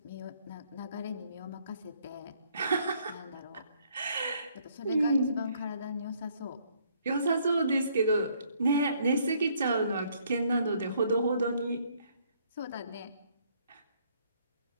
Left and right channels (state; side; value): inverted; both; correlation -0.66